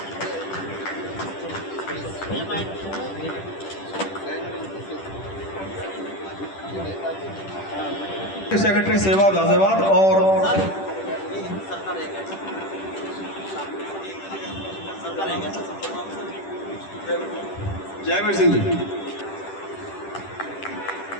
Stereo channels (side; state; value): right; late; 10 ms